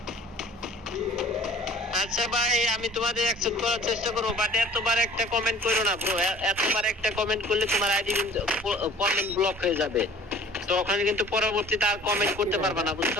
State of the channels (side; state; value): both; normal; correlation 0.48